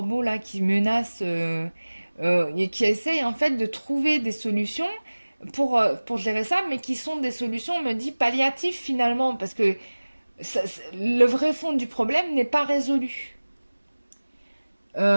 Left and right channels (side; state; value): both; inverted; correlation -1.00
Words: là qui menacent, et qui essaye en fait de trouver des solutions pour gérer ça, mais qui sont des solutions, on me dit, palliatives finalement, parce que le vrai fond du problème n'est pas résolu.